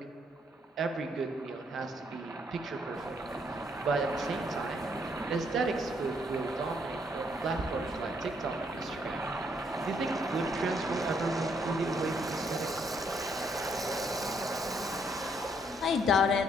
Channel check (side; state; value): both; normal; correlation 0.71